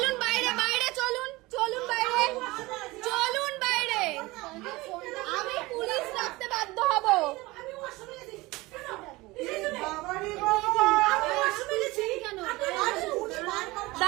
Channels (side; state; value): left; quieter; 21.2 dB